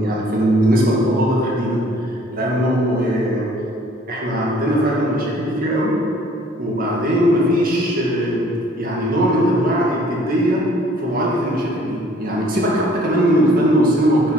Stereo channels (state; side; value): normal; both; correlation 0.57